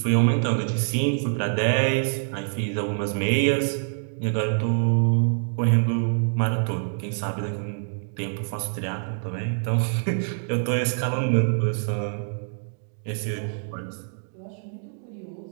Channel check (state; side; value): silent; left; digital silence